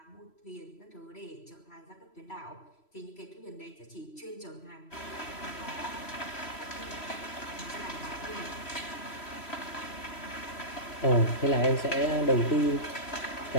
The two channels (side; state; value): right; late; 3.0 ms